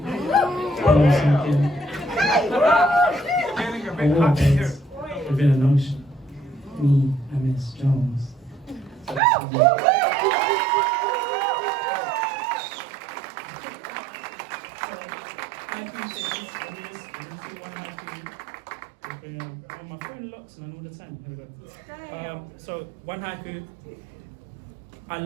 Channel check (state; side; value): drops out; left; at 9.2 s